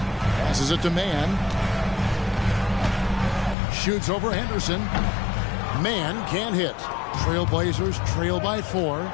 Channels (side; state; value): right; drops out; at 3.6 s